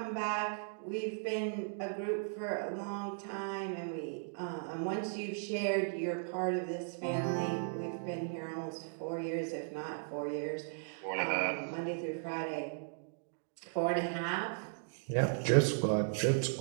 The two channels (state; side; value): silent; left; digital silence